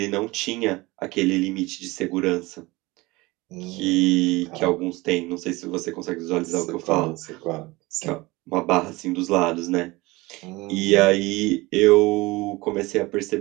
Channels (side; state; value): left; quieter; 21.8 dB